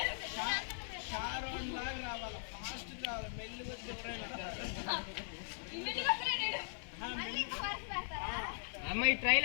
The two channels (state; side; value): silent; right; 51 dB below the other